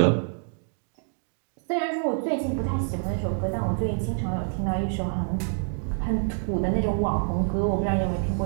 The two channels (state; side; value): silent; left; digital silence